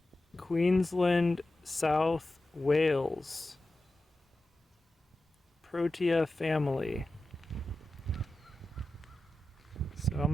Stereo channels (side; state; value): both; normal; correlation 0.93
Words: Queensland, South Wales, Protea family. So I'm